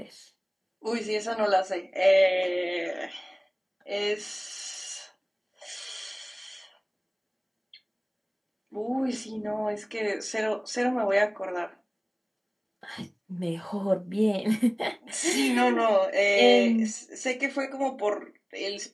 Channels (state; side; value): identical; both; correlation 1.00